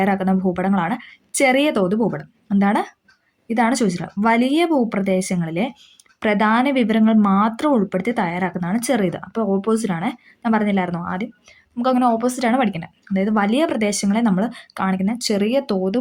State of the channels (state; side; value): identical; both; correlation 1.00